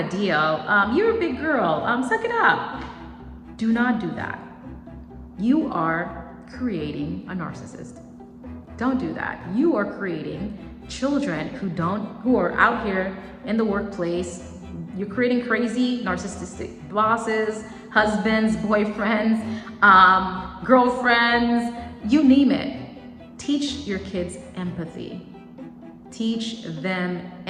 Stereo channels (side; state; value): both; identical; correlation 1.00